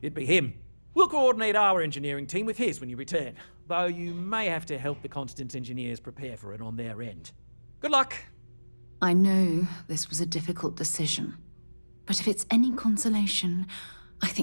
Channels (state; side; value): inverted; both; correlation -1.00